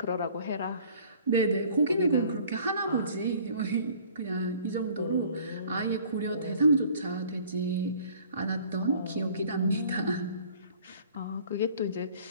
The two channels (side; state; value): both; inverted; correlation -0.52